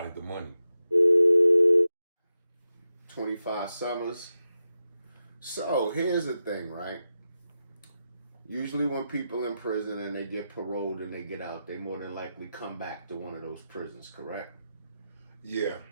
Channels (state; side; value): inverted; both; correlation -0.90